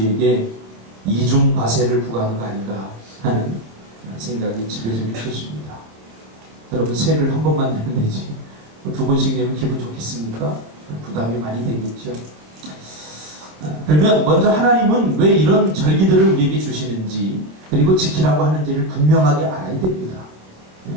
이중 과세를 부과하는 거 아닌가 하는 생각이 지배적일 것입니다. 여러분 세를 한 번만 내면 되지 두 번씩 내면 기분 좋겠습니까? 부담이 많이 되겠죠. 그러면 먼저 하나님은 왜 이런 절기들을 우리에게 주시는지 그리고 지키라고 하는지를 분명하게 알아야 됩니다.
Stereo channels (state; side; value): late; left; 27 ms